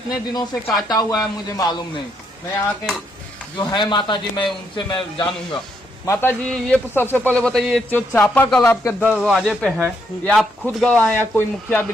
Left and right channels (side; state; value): both; normal; correlation 0.76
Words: दिनों से काटा हुआ है मुझे मालूम नहीं। मैं यहाँ के जो है माता जी, मैं उनसे मैं जानूंगा। माता जी ये सबसे पहले बताइए, जो चापाकल आपके दरवाजे पे है ये आप खुद गवाए या कोई मुखिया